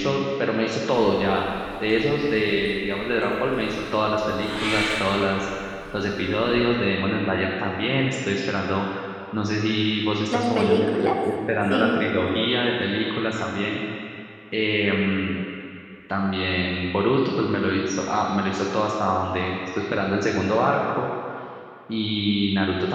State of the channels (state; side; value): identical; both; correlation 1.00